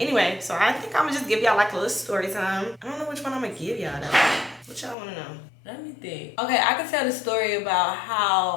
so I think I'm gonna just give y'all like a little story time. I don't know which one I'm gonna give y'all though. What y'all wanna know? Let me think. Okay, I can tell the story about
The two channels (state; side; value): drops out; right; at 5.0 s